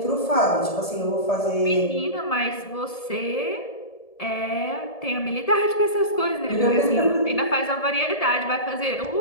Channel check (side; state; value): right; late; 1.7 ms